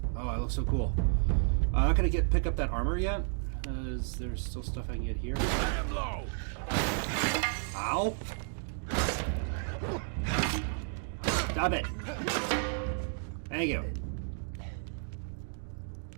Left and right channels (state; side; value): silent; left; 56 dB below the other